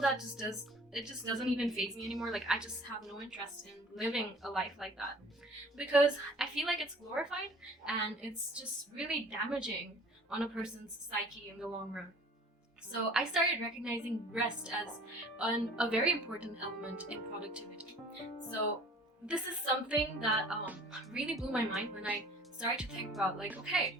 that just doesn't even faze me anymore. Like I just have no interest in living a life like that because I feel like it's glorified and it's just really damaging on a person's psyche in the long run. So I started recognizing rest as a very important element in productivity. So this is something that really blew my mind when I started to think about like, okay,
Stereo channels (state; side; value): normal; both; correlation 0.49